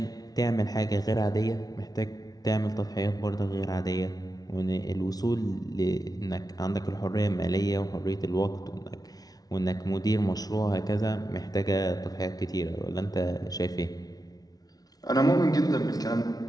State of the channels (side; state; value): right; late; 0.18 ms